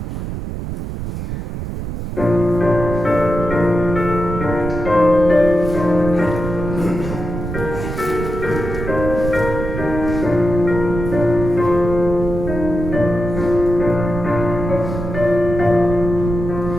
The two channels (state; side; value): noise; right; rumble, 5 dB below the sound